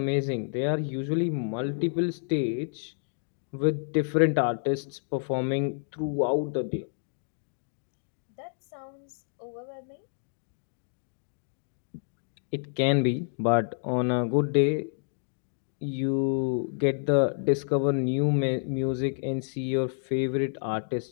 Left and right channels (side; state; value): right; silent; digital silence